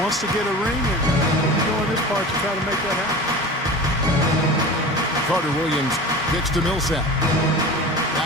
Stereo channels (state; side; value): normal; both; correlation 0.33